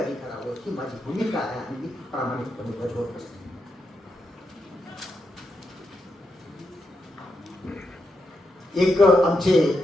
करावं, ही माझी भूमिका आहे आणि मी प्रामाणिकपणे बजावत असते. एक आमचे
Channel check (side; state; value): both; normal; correlation 0.84